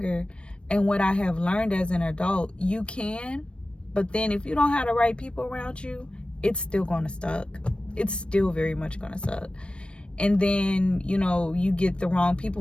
And what I have learned as an adult, you can, but then if you don't have the right people around you, it's still gonna suck. It's still very much gonna suck. And then, you know, you get the wrong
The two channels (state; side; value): late; right; 0.058 ms